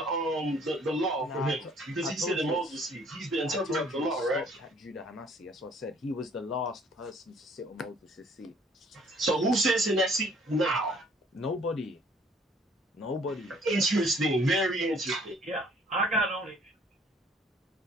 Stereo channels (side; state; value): both; normal; correlation 0.58